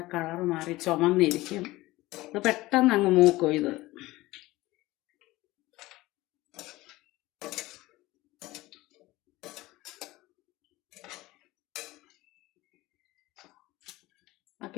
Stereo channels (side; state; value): right; quieter; 18.9 dB